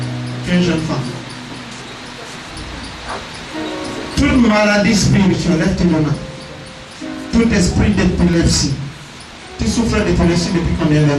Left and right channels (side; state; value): both; identical; correlation 1.00